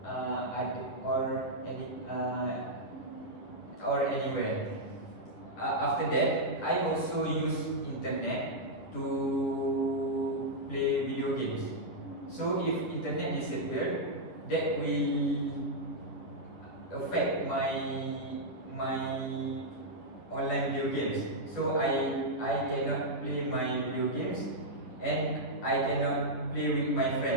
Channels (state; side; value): late; right; 10 ms